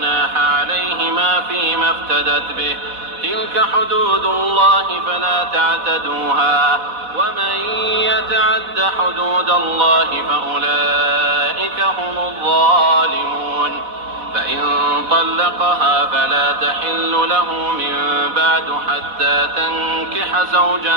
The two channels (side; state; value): left; late; 4.1 ms